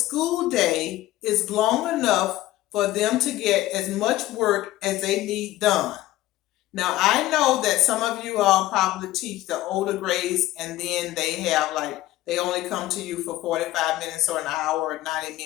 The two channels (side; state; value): right; quieter; 15.9 dB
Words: day is long enough for them to get as much work as they need done. Now, I know that some of you all probably teach the older grades, and then they only come to you for 45 minutes or an hour or 90